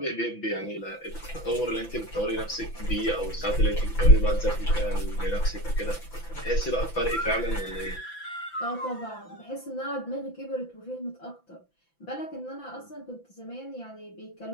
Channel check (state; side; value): late; right; 5.9 ms